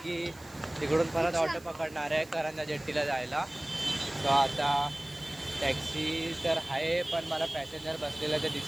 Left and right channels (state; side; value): noise; right; hiss, 23 dB below the sound